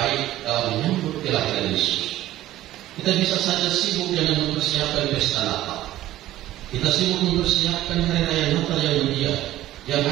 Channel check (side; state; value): left; quieter; 14.6 dB